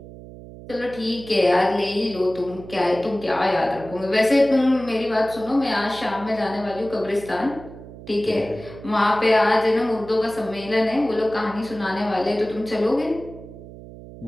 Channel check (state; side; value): noise; right; hum, 16 dB below the sound